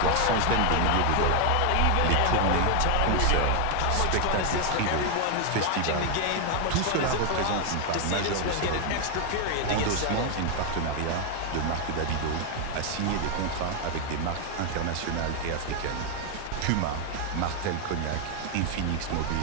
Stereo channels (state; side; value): different; both; correlation 0.01